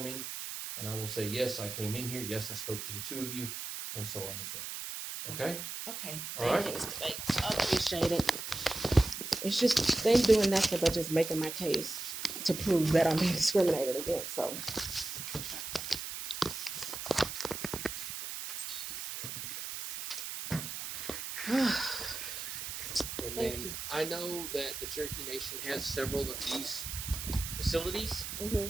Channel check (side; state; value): right; noise; hiss, 6 dB below the sound